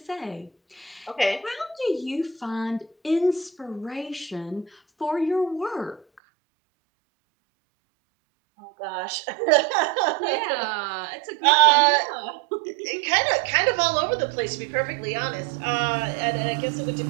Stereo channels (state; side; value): drops out; left; at 6.2 s